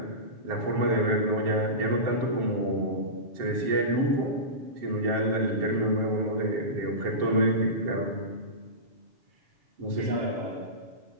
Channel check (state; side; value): late; left; 7.1 ms